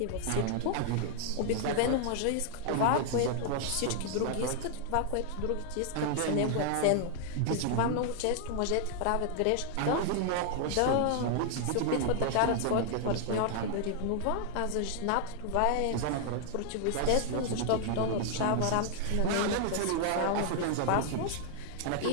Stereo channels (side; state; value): both; different; correlation -0.01